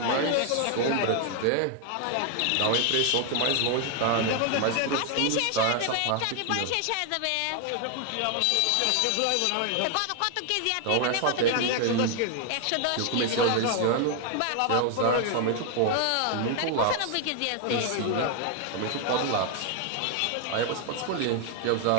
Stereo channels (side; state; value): both; different; correlation 0.01